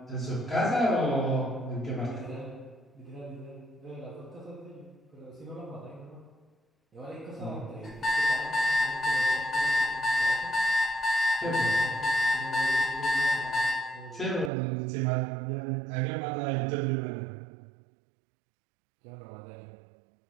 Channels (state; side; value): drops out; left; at 14.5 s